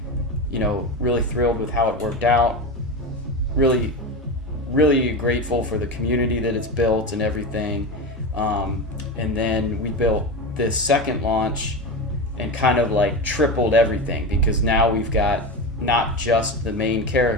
really thrilled with how it worked out. Really grateful for the community that it's built and everything. And then we built this second launch and kind of like tripled everything, because now we've got not just the main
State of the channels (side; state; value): both; normal; correlation 0.21